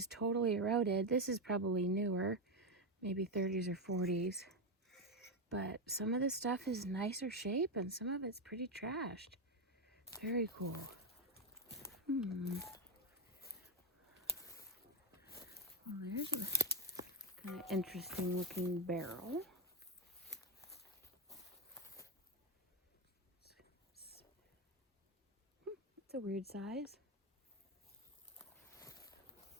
totally eroded. This is probably newer, maybe 30s or 40s. But some of this stuff is nicer shape and some of it's pretty trashed. Very cool. Well, there's a kind of interesting looking barrel. It's a weird size.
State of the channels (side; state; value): both; normal; correlation 0.07